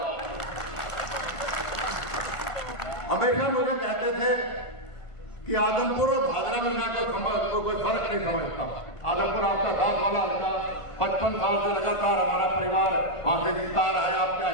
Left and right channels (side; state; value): right; late; 1.5 ms